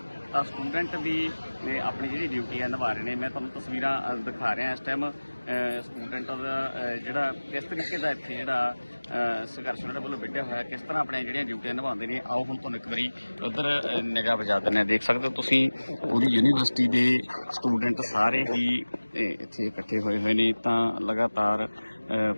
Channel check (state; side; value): inverted; both; correlation -1.00